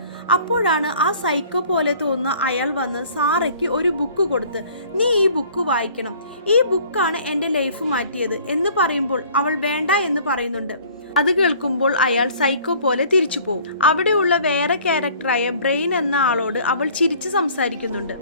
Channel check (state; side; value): inverted; both; correlation -0.52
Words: അപ്പോഴാണ് ആ സൈക്കോ പോലെ തോന്നുന്ന അയാൾ വന്ന് സാറയ്ക്ക് ഒരു ബുക്ക് കൊടുത്ത്, നീ ഈ ബുക്ക് വായിക്കണം, ഈ ബുക്കാണ് എൻ്റെ ലൈഫ് മാറ്റിയത് എന്ന് പറയുമ്പോൾ അവൾ വേണ്ട എന്ന് പറയുന്നുണ്ട്. അത് കേൾക്കുമ്പോൾ അയാൾ സൈക്കോ പോലെ തിരിച്ചു പോകും. അവിടെയുള്ള വേറെ ക്യാരക്ടറായ ബ്രെയിൻ എന്ന ആളോട് അവൾ ചിരിച്ച് സംസാരിക്കുന്നുണ്ട്.